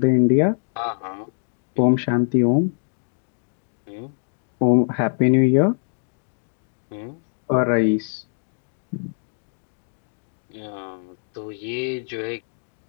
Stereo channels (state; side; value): silent; right; digital silence